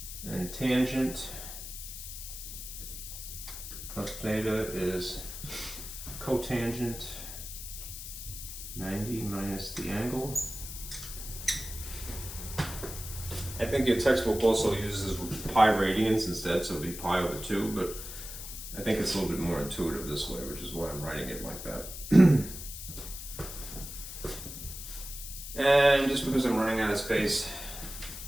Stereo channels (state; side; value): noise; left; hiss, 9 dB below the sound